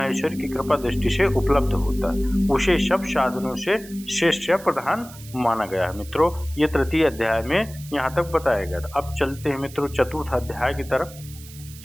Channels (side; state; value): right; noise; hiss, 18 dB below the sound